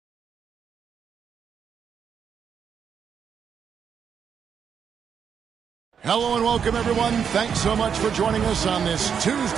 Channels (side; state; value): left; quieter; 7.3 dB